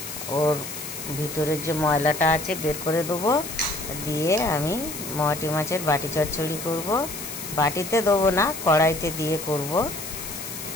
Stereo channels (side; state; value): left; noise; hiss, 9 dB below the sound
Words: ওর ভিতরের যে ময়লাটা আছে বের করে দেবো। দিয়ে আমি মোয়াটি মাছের বাটি চচ্চড়ি করব। বাটিতে দেবো না, কড়াইতে দিয়ে করব।